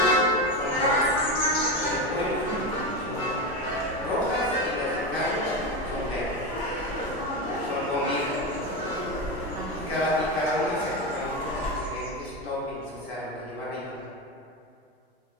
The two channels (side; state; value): both; normal; correlation 0.17